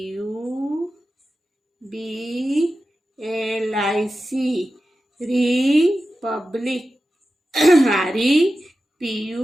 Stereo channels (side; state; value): both; normal; correlation 0.93